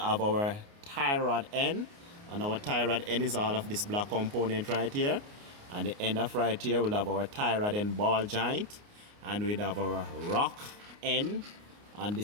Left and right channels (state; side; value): late; left; 29 ms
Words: our tie rod end, and our tie rod end is all of this black component right here. And the end of right here, we'll have our tie rod end ball joint, and we'll have our rock end, and